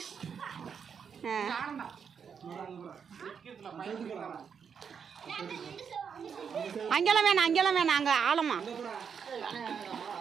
அங்கெல்லாம் வேணாம் அங்கே ஆழமா.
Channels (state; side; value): quieter; left; 6.8 dB